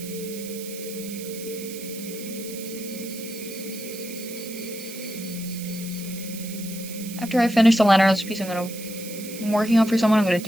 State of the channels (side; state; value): right; noise; hiss, 12 dB below the sound